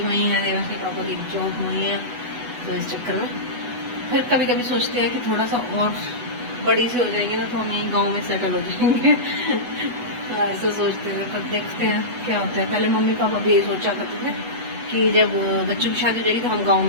वहीं है, देवांश के पापा की जॉब वहीं है, तो इस चक्कर में फिर कभी कभी सोचते हैं कि थोड़ा सा और बड़ी से हो जाएंगे ना तो हम यहीं गाँव में सेटल हो जाएंगे ऐसा सोचते थे, पर देखते हैं क्या होता है। पहले मम्मी पापा भी ये सोचा करते थे कि जब बच्चों की शादी हो जाएगी तो हम गांव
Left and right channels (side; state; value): left; late; 8.1 ms